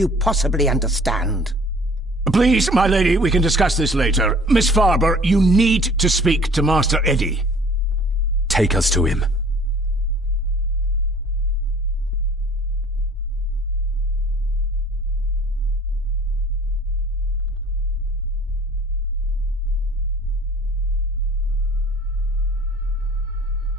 possibly understand? Please, my lady, we can discuss this later. Miss Farber, you need to speak to Master Eddie. Take us to him.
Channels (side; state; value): both; normal; correlation 0.51